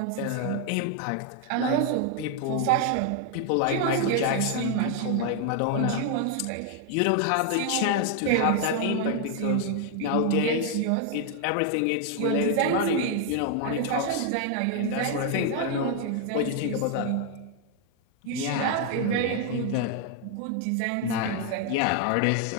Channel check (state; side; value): different; both; correlation 0.00